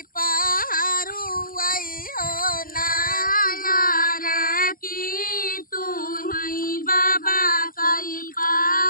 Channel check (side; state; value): right; late; 0.41 ms